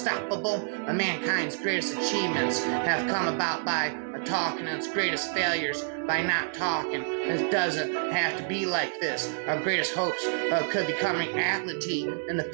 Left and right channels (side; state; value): left; silent; digital silence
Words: Mankind's greatest achievements have come about by talking, and its greatest failures by not talking. It doesn't have to be like this. Our greatest hopes could become reality in the